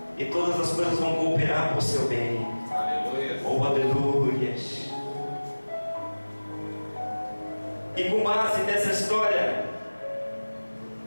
e todas as coisas vão cooperar para o seu bem. Aleluia. Oh, aleluias. E com base nessa história,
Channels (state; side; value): inverted; both; correlation -1.00